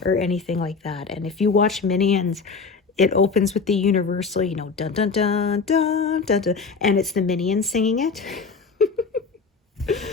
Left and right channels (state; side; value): quieter; right; 4.8 dB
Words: or anything like that. And if you watch Minions, it opens with the Universal, you know, dun dun dun dun dun dun, and it's the Minions singing it.